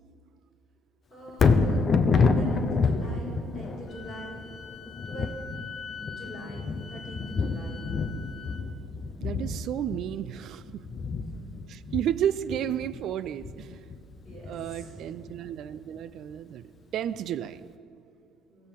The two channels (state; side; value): normal; both; correlation 0.69